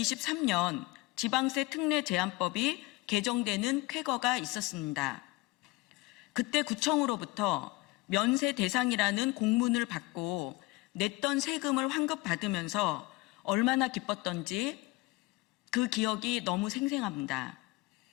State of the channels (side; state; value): right; quieter; 22.2 dB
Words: 지방세 특례 제한법이 개정되는 쾌거가 있었습니다. 그때 구청으로부터 면세 대상이라는 공문을 받고 냈던 세금을 환급받으면서 얼마나 기뻤던지 그 기억이 너무 생생합니다.